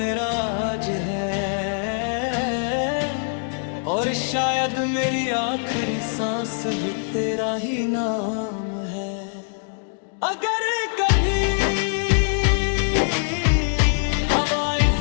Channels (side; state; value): right; silent; digital silence